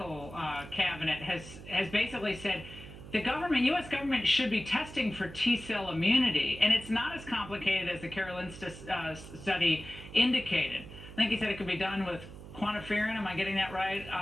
cabinet has basically said the U.S. government should be testing for T-cell immunity, and it's not as complicated as the Karolinska study indicated. I think he said it could be done with quantiferin. Am I getting that right?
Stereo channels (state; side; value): noise; right; hum, 14 dB below the sound